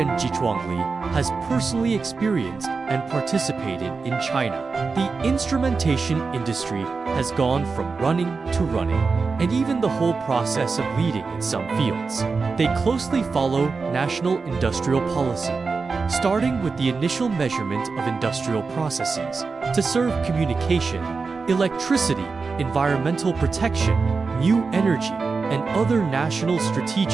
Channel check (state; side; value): quieter; left; 4.5 dB